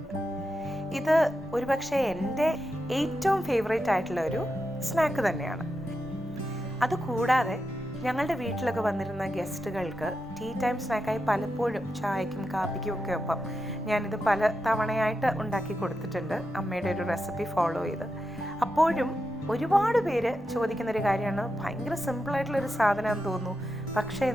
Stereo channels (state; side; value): noise; right; rumble, 25 dB below the sound